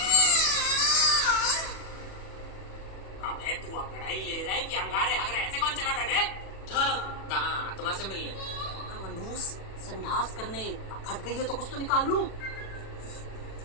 अबे तू अंगड़ाई ले रहा है कि अंगारे हगरे ऐसे कौन चला रहा है? कहाँ आत्मा से मिलने? मनूस संडास करने फट गई है तो कुछ तो निकाल लूं।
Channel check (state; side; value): late; right; 37 ms